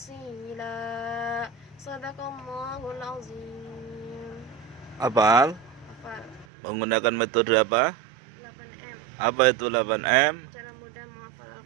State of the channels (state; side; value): drops out; left; at 6.5 s